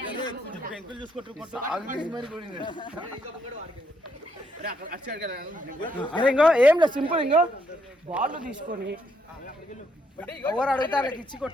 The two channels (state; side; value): normal; both; correlation 0.74